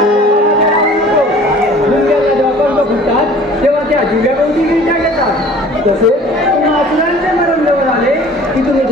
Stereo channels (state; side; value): normal; both; correlation 0.48